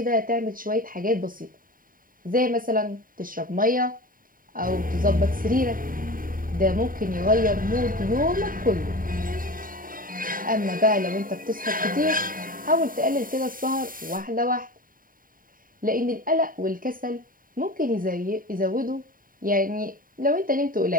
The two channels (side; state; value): left; late; 0.41 ms